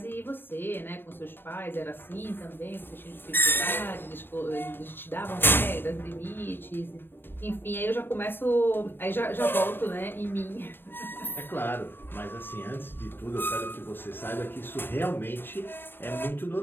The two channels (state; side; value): late; right; 0.10 ms